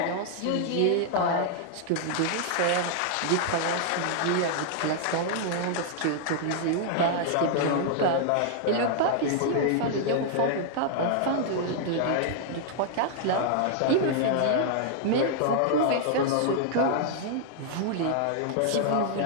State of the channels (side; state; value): both; different; correlation -0.01